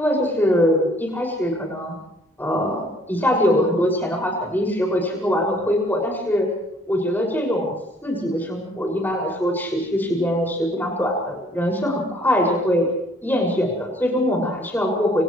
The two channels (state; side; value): normal; both; correlation 0.60